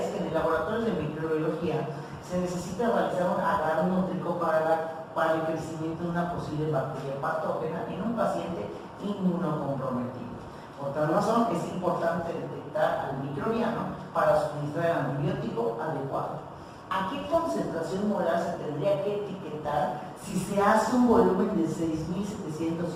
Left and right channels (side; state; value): both; identical; correlation 1.00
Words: que en el laboratorio de microbiología se necesita realizar un agarnótrico para el crecimiento de una posible bacteria patógena en un paciente inmunocomprometido. Por tal razón, es importante detectar al microbiano para suministrar el antibiótico adecuado. ¿A qué concentración molar se tendría que etiquetar si se hace un volumen de